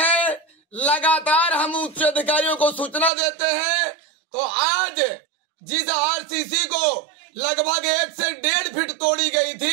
लगातार हम उच्च अधिकारियों को सूचना देते हैं, तो आज जिस आरसीसी को लगभग 1 से 1.5 फीट तोड़ी गई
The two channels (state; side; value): drops out; left; at 3.1 s